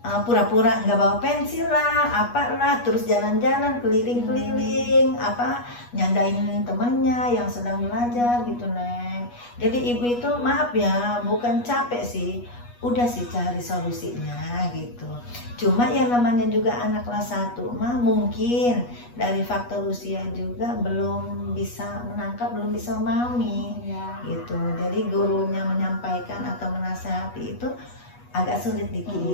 pura-pura nggak bawa pensil lah, apalah, terus jalan-jalan keliling-keliling, nyandain temennya yang sedang belajar gitu Neng. Jadi ibu itu maaf ya, bukan capek sih, udah sih cari solusinya gitu. Cuma yang namanya juga anak kelas 1 mah mungkin dari faktor usia juga belum bisa menangkap, belum bisa memahami gitu. Jadi gurunya menyampaikan atau menasihati itu agak sulit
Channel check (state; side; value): late; right; 8.3 ms